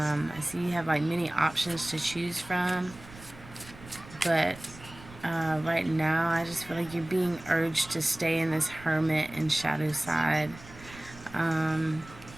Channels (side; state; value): right; noise; rumble, 18 dB below the sound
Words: see you have many options to choose from, but right now I just feel like you're being urged to stay in this Hermit and shadow side.